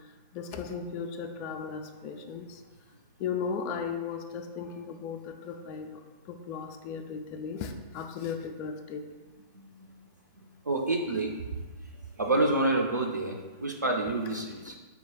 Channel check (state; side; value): inverted; both; correlation -0.37